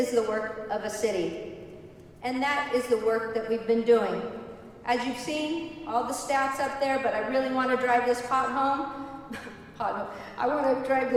the work of a city, and that is the work that we've been doing. As you've seen, all the stats up there, but I really want to drive this point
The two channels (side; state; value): both; identical; correlation 1.00